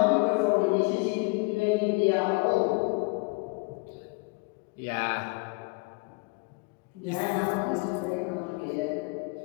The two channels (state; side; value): quieter; right; 29.9 dB